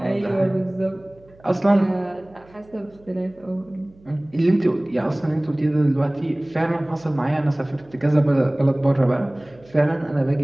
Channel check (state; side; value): noise; right; hum, 27 dB below the sound